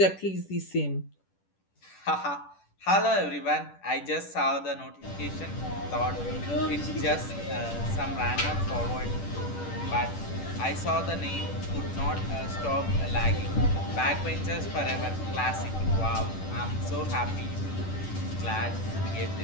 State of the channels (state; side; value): late; right; 10 ms